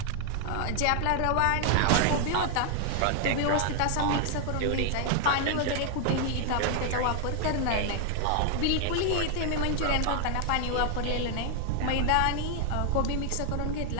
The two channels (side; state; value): both; different; correlation 0.00